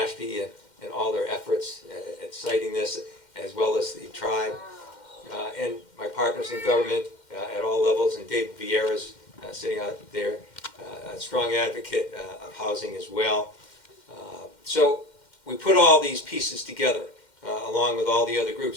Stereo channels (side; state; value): right; late; 2.1 ms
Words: and all their efforts at citing this, as well as the tribe. And my partners in government at all levels, and David Vieira's sitting out there, a strong advocate of housing as well. So we put all these pieces together, along with all the other